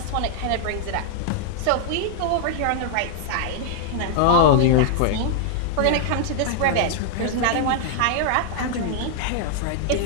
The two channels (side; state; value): both; different; correlation -0.01